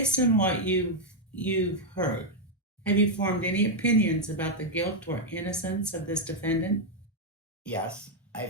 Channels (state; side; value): normal; both; correlation 0.00